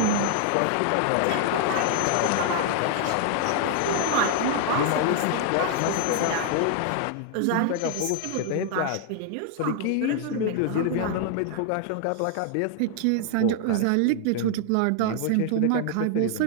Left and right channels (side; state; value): both; different; correlation 0.00